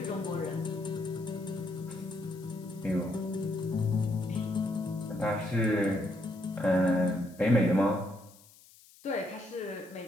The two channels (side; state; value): left; noise; hiss, 25 dB below the sound